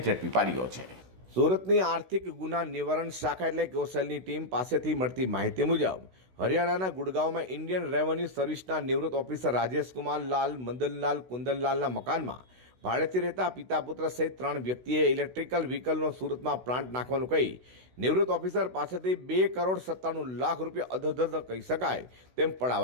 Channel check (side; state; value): left; late; 16 ms